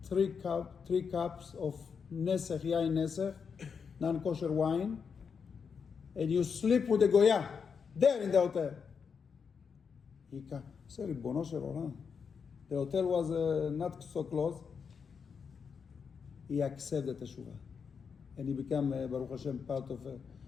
three cups of nesech, yain nesech, non-kosher wine, and you sleep with the goya, there in the hotel. He said, Ribono shel olam. The hotel was not so close. He accepted the teshuvah. And he became, Baruch Hashem, part of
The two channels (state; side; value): quieter; right; 6.2 dB